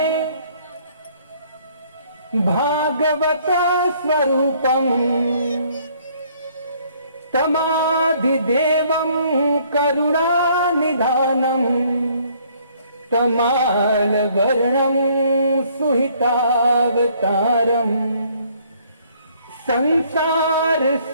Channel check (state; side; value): inverted; both; correlation -0.63